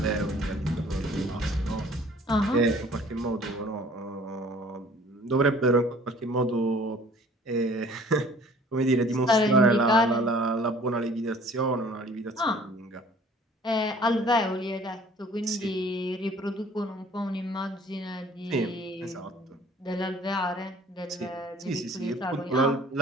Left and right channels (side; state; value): both; normal; correlation 0.52